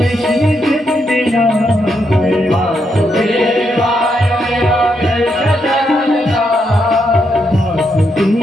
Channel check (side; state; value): both; normal; correlation 0.80